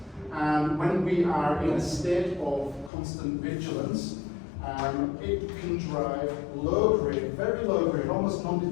And when we are in a state of constant vigilance, it can drive low-grade, very low-grade, almost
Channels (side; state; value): right; drops out; at 2.9 s